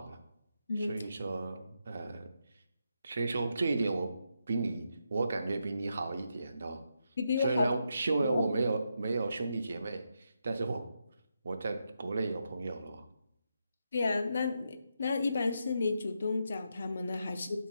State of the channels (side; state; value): both; inverted; correlation -0.83